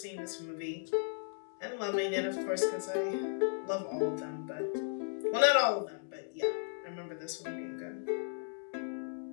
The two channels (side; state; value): right; silent; digital silence